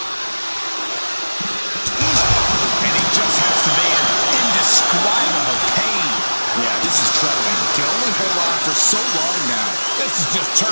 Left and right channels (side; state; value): both; inverted; correlation -1.00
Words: And he just has to be in indescribable pain. Yeah, this is troubling. Can only hold on for so long now. This is just